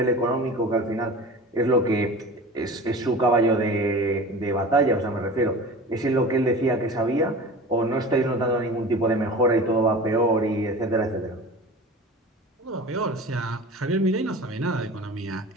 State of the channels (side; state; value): both; normal; correlation 0.36